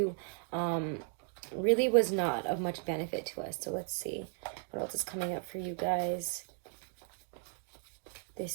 really was not of much benefit to us. So let's see what else is coming up for you guys this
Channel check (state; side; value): silent; left; 54 dB below the other